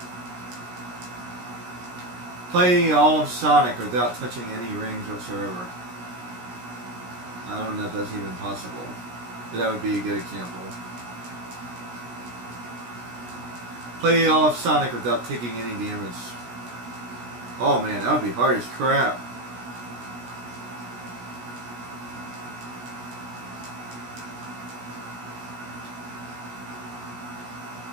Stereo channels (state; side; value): late; left; 16 ms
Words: Play all of Sonic without touching any rings whatsoever. I don't know if that's even possible, but that would be a good example. Play all of Sonic without taking any damage. Oh man, that would be hard as crap.